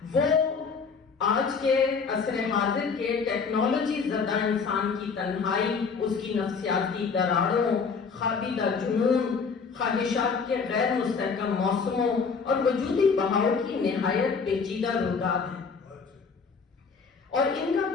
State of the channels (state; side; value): quieter; right; 5.3 dB